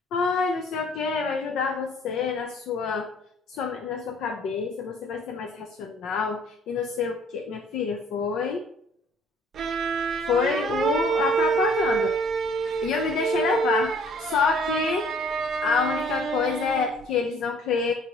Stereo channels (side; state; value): both; normal; correlation 0.57